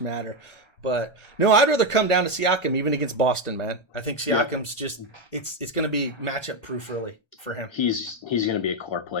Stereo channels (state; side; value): late; right; 1.3 ms